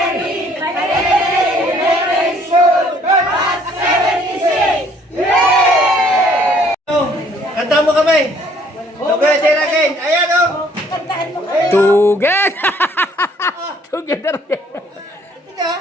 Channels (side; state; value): both; normal; correlation 0.61